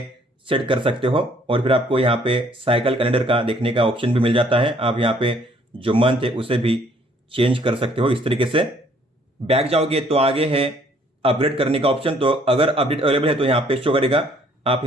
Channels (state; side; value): normal; both; correlation 0.62